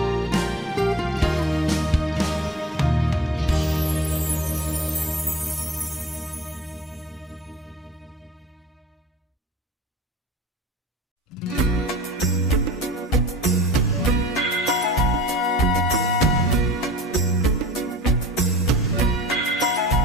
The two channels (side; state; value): both; normal; correlation 0.44